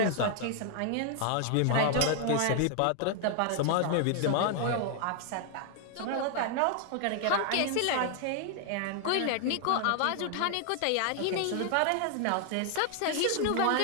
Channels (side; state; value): both; different; correlation 0.00